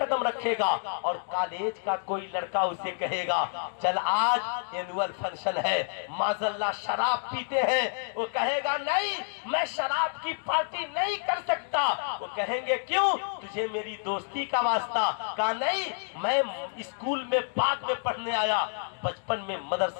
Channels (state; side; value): silent; right; digital silence